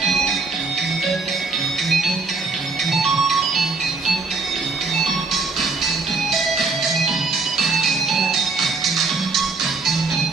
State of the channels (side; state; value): left; quieter; 4.0 dB